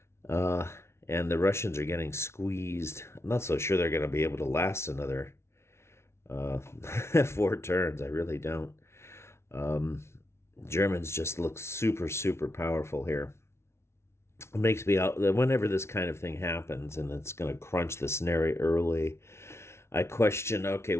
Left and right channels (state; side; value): late; right; 0.13 ms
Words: And the Russians are getting squeezed. I'm not so sure they're going to be able to last another 4 turns. I really don't. Germans just look super, super powerful here. It makes me out whenever this kind of thing happens and it's going to crunch the scenario early, I question, okay,